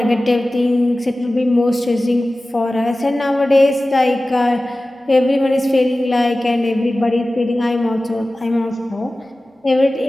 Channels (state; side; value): normal; both; correlation 0.96